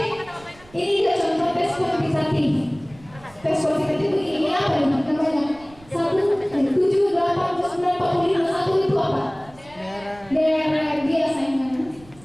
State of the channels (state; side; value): noise; right; rumble, 24 dB below the sound